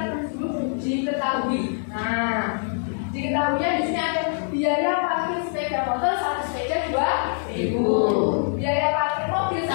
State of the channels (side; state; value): right; silent; digital silence